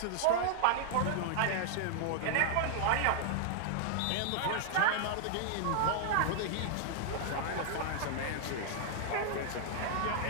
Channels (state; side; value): different; both; correlation -0.01